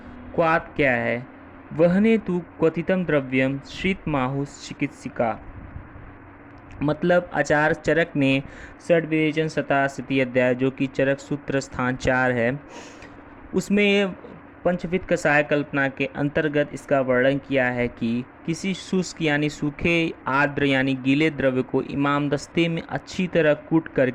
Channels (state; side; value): identical; both; correlation 1.00